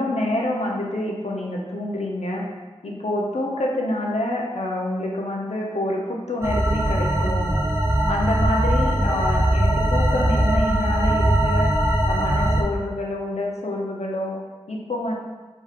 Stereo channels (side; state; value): both; normal; correlation 0.81